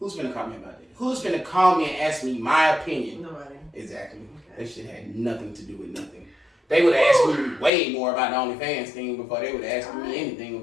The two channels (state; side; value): drops out; right; at 7.7 s